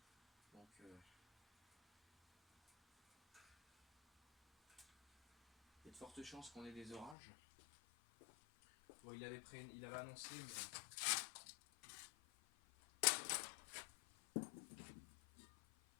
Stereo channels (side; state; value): right; drops out; at 7.2 s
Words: Donc il y a de fortes chances qu'on ait des orages. Bon, il avait annoncé, mais...